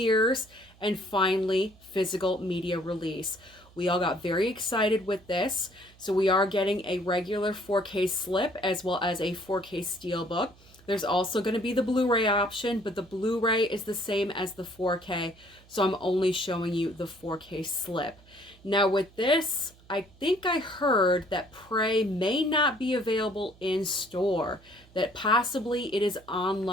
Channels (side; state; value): right; noise; hum, 26 dB below the sound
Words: and finally physical media release. We all got very excited with this. So we are getting a regular 4K slip as well as a 4K steelbook. There's also going to be the Blu-ray option, but the Blu-ray is the same as the 4K, so I'm only showing you the 4K slip. Now with this, I think I heard that Prey may not be available in store, that possibly it is